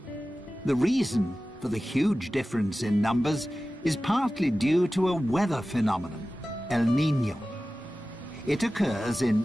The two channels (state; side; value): normal; both; correlation 0.95